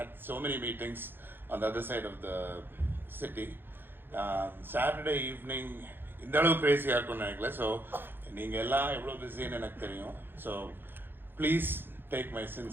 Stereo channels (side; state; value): left; late; 0.10 ms